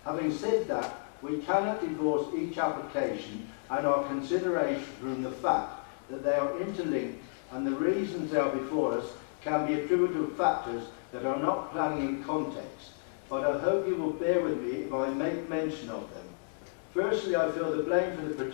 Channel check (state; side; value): silent; right; 57 dB below the other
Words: Having said that, we cannot divorce each application and our consideration from the fact that they are interlinked, and the reasons they are before us can be attributable to factors that are not planning in context, but I hope you will bear with me if I make mention of them. Firstly, I feel the blame for the